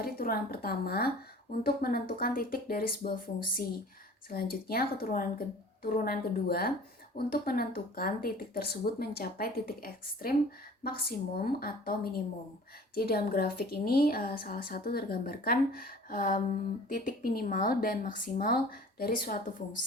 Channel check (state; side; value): normal; both; correlation 0.46